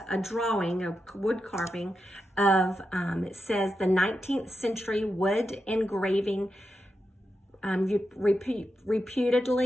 a drawing, a wood carving of, it says the 19th century wood engraving,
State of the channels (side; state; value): both; normal; correlation 0.88